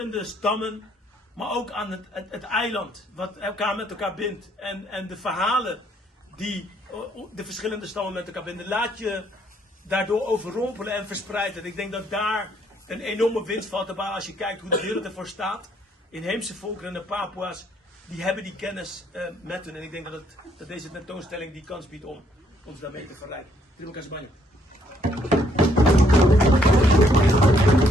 stammen, maar ook aan het eiland, wat elkaar met elkaar bindt. En de verhalen die de verschillende stammen met elkaar binden. Laat je daardoor overrompelen en verspreiden. Ik denk dat daar een enorme winst valt te behalen als je kijkt hoe de wereld ervoor staat. Inheemse volkeren en de Papua's, die hebben die kennis met hun. En ik denk dat deze tentoonstelling die kans biedt om ons daarmee te verrijken. Terima kasih banyak.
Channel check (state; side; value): normal; both; correlation 0.69